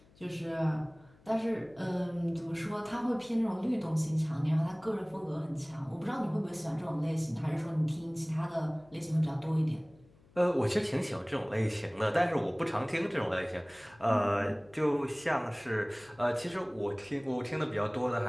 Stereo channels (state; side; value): noise; left; hum, 28 dB below the sound